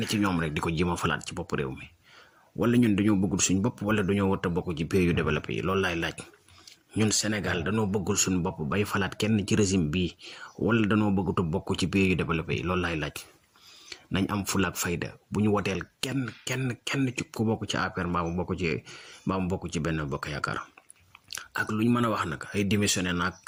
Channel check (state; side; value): identical; both; correlation 1.00